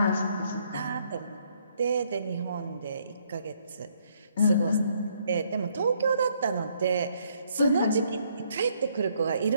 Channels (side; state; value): both; inverted; correlation -0.69